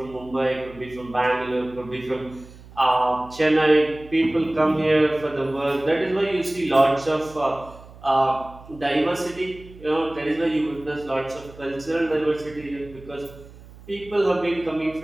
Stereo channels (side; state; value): right; noise; hum, 20 dB below the sound